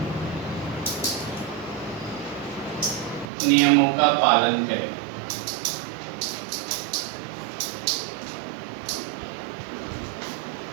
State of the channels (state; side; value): drops out; left; at 3.2 s